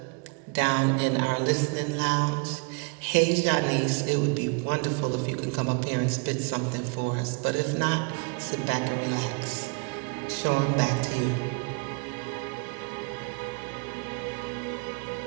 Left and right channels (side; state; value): left; quieter; 34.1 dB